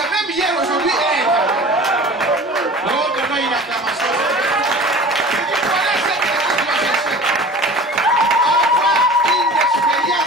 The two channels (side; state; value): both; normal; correlation 0.40